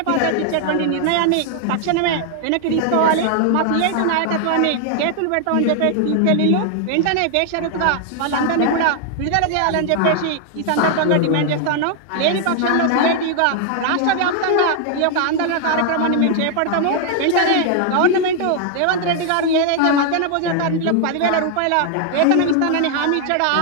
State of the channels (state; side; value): different; both; correlation 0.00